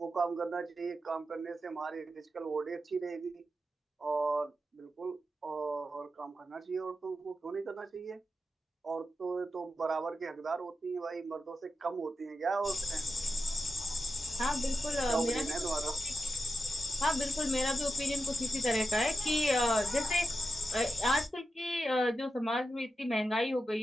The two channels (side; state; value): both; normal; correlation 0.88